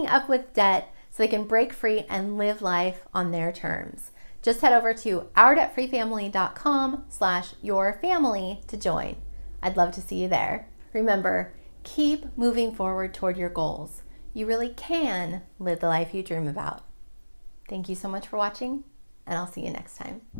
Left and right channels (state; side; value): inverted; both; correlation -1.00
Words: up with debt so they can break free and live life on their terms. Just head over to ourdebtfreefamily.com/yourfamily to join. I'd love to see you there. Remember, keep moving forward toward your goals. You really can live the life you dream about. Thank you so much for watching, and I'll see you next time.